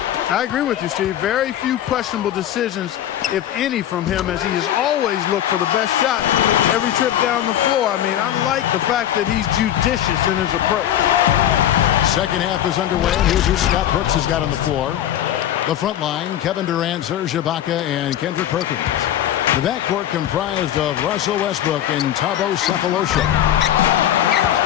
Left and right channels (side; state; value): right; quieter; 11.4 dB